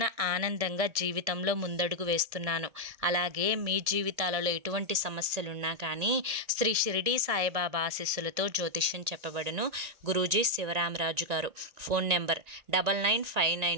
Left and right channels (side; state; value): left; late; 1.8 ms